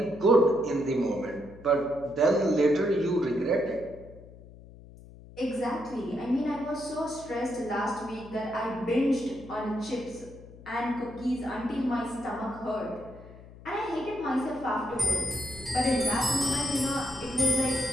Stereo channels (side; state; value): left; noise; hum, 19 dB below the sound